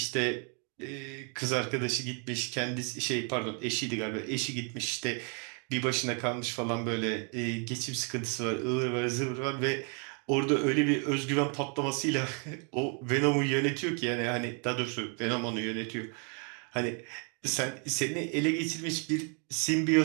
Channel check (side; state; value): left; quieter; 38.3 dB